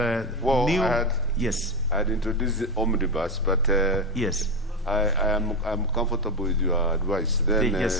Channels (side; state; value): both; normal; correlation 0.13